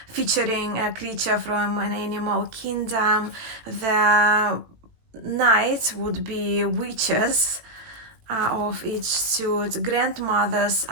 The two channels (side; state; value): left; late; 18 ms